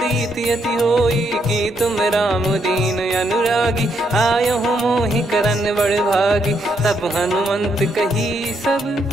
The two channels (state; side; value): normal; both; correlation 0.76